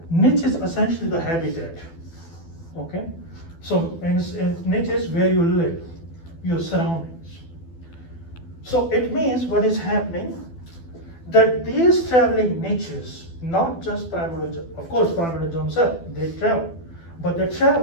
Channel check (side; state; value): right; late; 12 ms